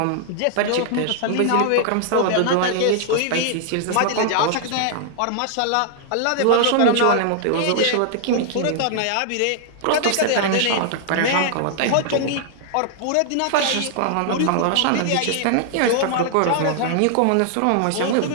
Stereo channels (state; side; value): different; both; correlation -0.01